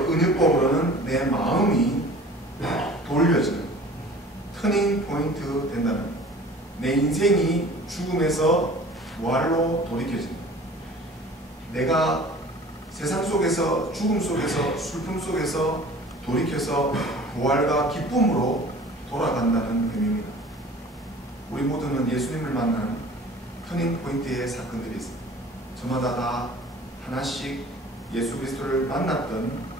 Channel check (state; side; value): normal; both; correlation 0.45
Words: 은유법으로는 내 마음이 돌려지는 터닝 포인트 된다는 내 인생이 죽음에서 부활로 돌이켜진다. 내가 세상 속에서 죽음 속에서 슬픔 속에서 돌이켜서 부활과 기쁨으로 돌아간다는 의미입니다. 우리 모두는 예수님을 만난 터닝 포인트의 사건들이 있습니다. 저마다 다 하나씩 예수 그리스도를 만났던